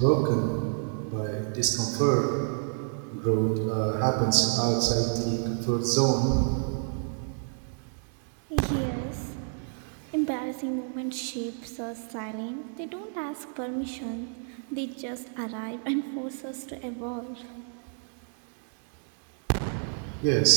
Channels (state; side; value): silent; left; digital silence